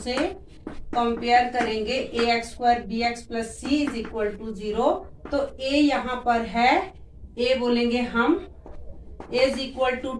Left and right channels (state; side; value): identical; both; correlation 1.00